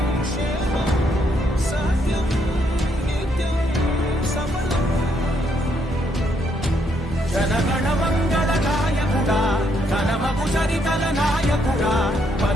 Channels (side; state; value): both; normal; correlation 0.73